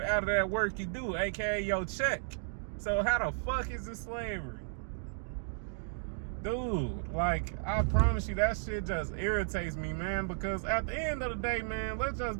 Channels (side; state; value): left; silent; digital silence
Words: out of that work you do, aka your check. So how the fuck is it slavery? Dude, like, I promise you, that shit just irritates me, man, because at the end of the day, man, let's just